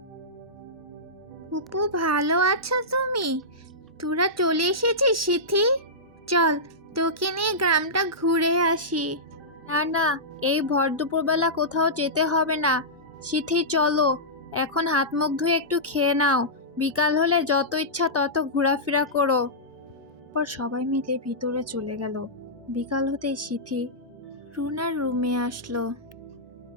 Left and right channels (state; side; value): normal; both; correlation -0.14